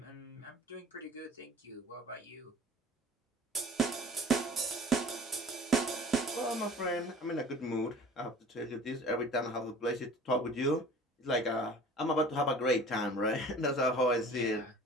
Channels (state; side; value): normal; both; correlation 0.45